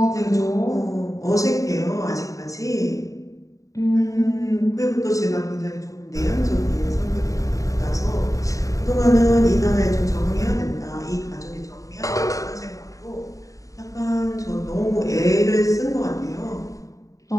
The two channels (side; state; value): right; late; 0.16 ms